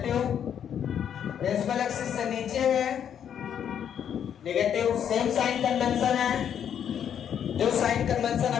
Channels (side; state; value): right; quieter; 8.9 dB